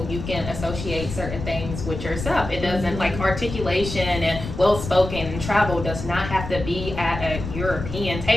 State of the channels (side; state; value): left; noise; rumble, 7 dB below the sound